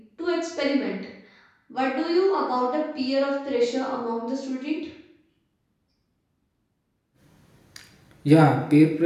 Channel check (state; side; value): identical; both; correlation 1.00